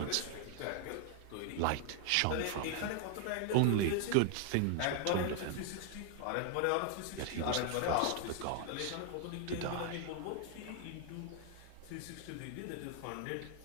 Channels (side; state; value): both; different; correlation 0.00